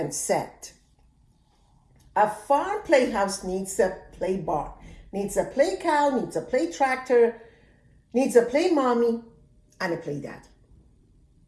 said, "A farm playhouse needs a play barn, needs a play cow, needs a play tractor, needs a play mommy, and a play daddy."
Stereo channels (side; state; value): both; identical; correlation 1.00